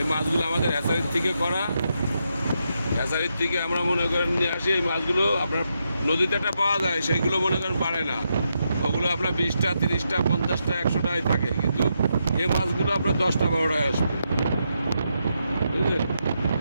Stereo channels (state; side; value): inverted; both; correlation -0.82